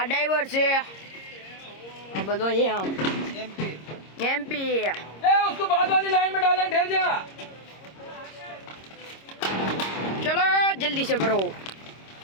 ड्राइवर से अब बदो ये हम एमपी ए उसको बाद वाली लाइन में डालें, ठहर जा। चलो जल्दी से भरो।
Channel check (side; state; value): right; late; 26 ms